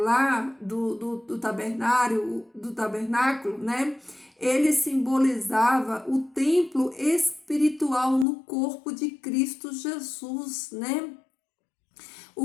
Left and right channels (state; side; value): drops out; right; at 8.2 s